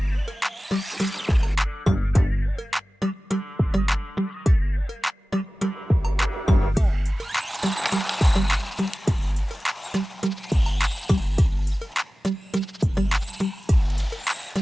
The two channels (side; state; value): both; normal; correlation 0.97